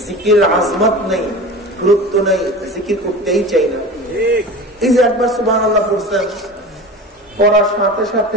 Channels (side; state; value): both; normal; correlation 0.33